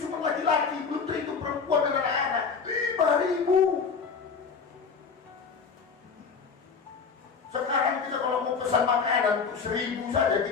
cuma laki-laki, belum terhitung perempuan dan anak-anak. 5.000. Sekarang kita kalau mau pesan makanan untuk 1.000 saja,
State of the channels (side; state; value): right; quieter; 5.5 dB